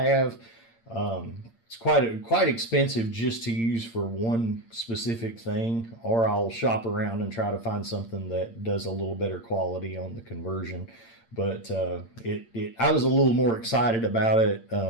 It's quite expensive just to use for one specific thing, or I'll shop around and try to find something that does a little better quality on the conversion. But I was a little more excited about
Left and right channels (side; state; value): right; late; 8.7 ms